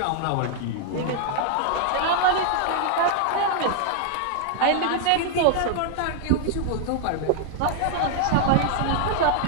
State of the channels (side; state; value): both; different; correlation 0.00